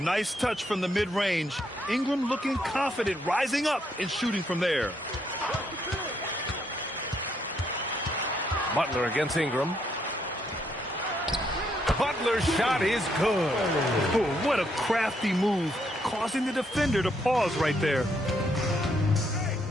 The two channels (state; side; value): normal; both; correlation 0.74